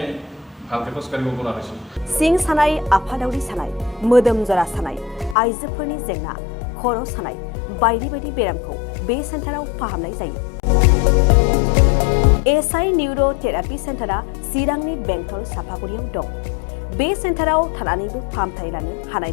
ভালকৈ খোজকাঢ়িব পৰা হৈছোঁ। सिं सानाय, आफादावरि सानाय, मोदोम जरा सानाय, आइजोफोरनि जेंना, खर' सानाय बायदि बायदि बेरामखौ बे सेन्टाराव फाहामनाय जायो। एसआइ निउर' थेरापि सेन्टारा चिरांनि बेंटल सापागुरियाव दं। बे सेन्टाराव थानानैबो फाहामथाय लानो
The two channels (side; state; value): right; drops out; at 5.4 s